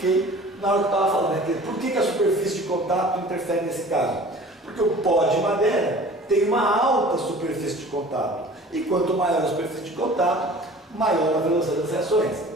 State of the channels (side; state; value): both; normal; correlation 0.45